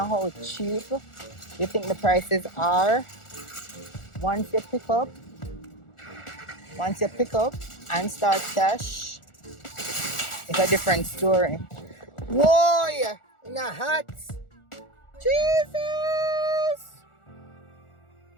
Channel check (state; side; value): late; right; 1.4 ms